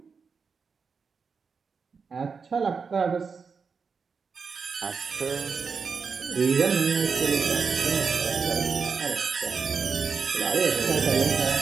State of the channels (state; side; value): quieter; left; 5.4 dB